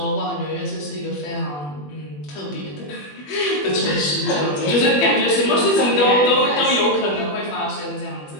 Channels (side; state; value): right; late; 20 ms